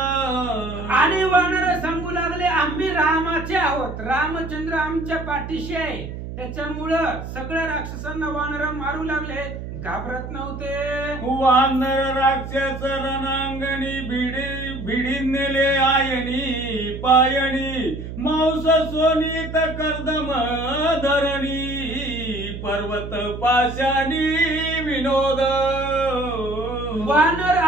आणि वानर सांगू लागले आम्ही रामाचे आहोत, रामचंद्र आमच्या पाठीशी आहे. त्याच्यामुळं सगळ्या राक्षसांना वानर मारू लागले, घाबरत नव्हते. वानर राक्षस रणांगणी भिडी नेले आयणी पायणी मांस सोनीत कर्दम धरणी पर्वत पाशानी विनोद. वानर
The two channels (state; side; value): noise; right; hum, 9 dB below the sound